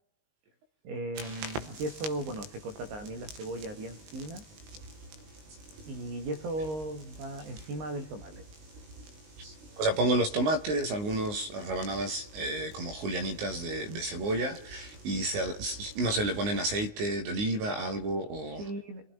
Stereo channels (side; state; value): left; late; 19 ms